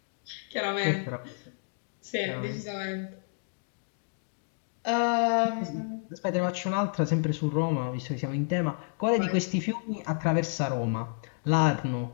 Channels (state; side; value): silent; right; 56 dB below the other